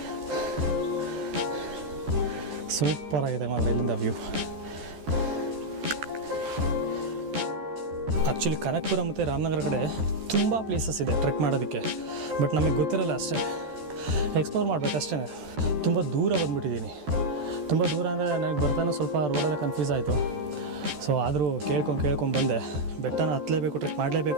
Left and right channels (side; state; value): left; late; 14 ms